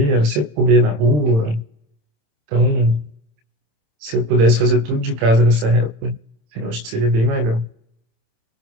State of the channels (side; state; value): left; late; 27 ms